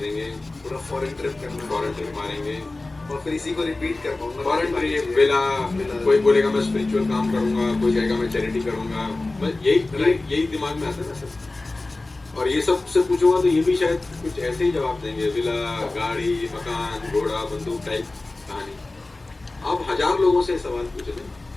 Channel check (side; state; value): right; quieter; 3.1 dB